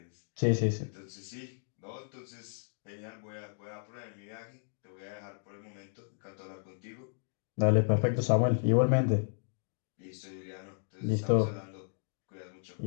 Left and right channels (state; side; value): silent; right; digital silence